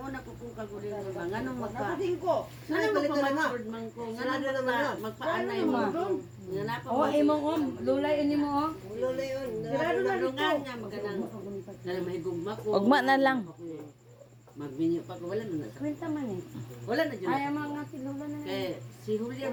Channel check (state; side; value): identical; both; correlation 1.00